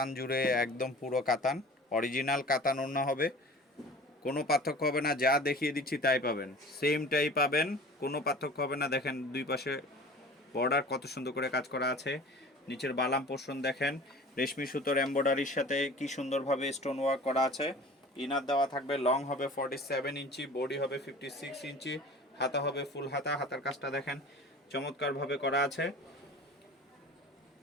জুড়ে, একদম পুরো কাতান, অরিজিনাল কাতান ওড়না হবে। কোনো পার্থক্য হবে না, যা দেখিয়ে দিচ্ছি তাই পাবেন, সেমটাই পাবেন, কোনো পার্থক্য হবে না। দেখেন দুই পাশে বর্ডার কত সুন্দর করে কাজ করা আছে। নিচের বালাম পোর্শন দেখেন, রেশমি সুতোর এমব্রয়ডারির সাথে কি সুন্দরভাবে স্টোন ওয়ার্ক করা আছে। ইনার দেওয়া থাকবে, লং হবে 47 ইঞ্চি, বডি হবে 56 ইঞ্চি, হাতা হবে ফুল হাতা। হাতার কাজটা দেখেন চমৎকারভাবে করা আছে।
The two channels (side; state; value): both; normal; correlation 0.42